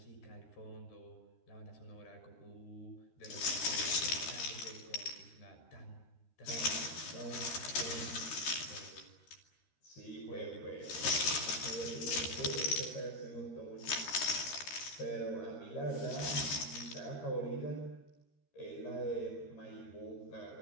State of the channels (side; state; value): right; late; 13 ms